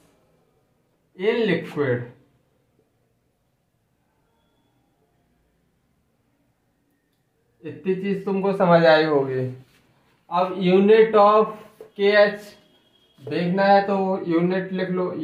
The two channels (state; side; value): identical; both; correlation 1.00